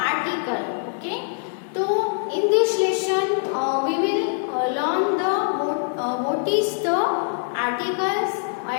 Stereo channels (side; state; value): right; silent; 63 dB below the other